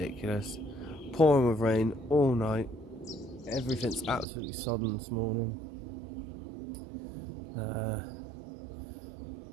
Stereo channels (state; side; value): drops out; left; at 4.2 s